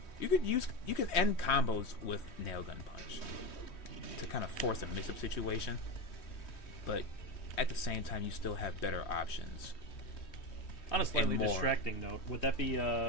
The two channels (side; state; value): right; late; 3.1 ms